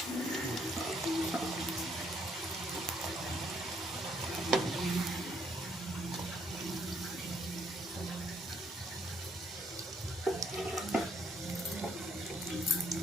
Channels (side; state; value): both; normal; correlation 0.69